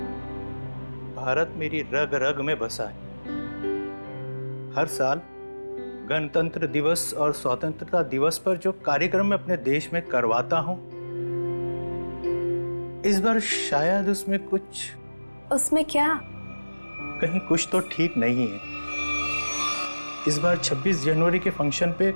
भारत मेरी रग रग में बसा है। हर साल गणतंत्र दिवस और स्वतंत्रता दिवस पर जो कार्यक्रम मैं अपने देश में करवाता हूँ, इस बार शायद उसमें कुछ। उसमें क्या? कहीं कुछ तो ठीक नहीं है। इस बार 26 जनवरी के फंक्शन पे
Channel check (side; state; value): both; inverted; correlation -1.00